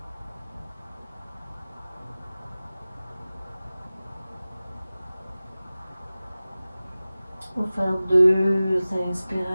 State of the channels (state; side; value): inverted; both; correlation -0.97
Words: On va faire 2